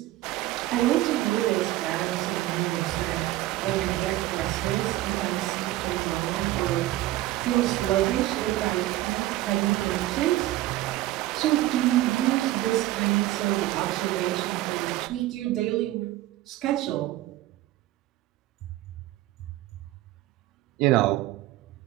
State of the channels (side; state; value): left; quieter; 16.0 dB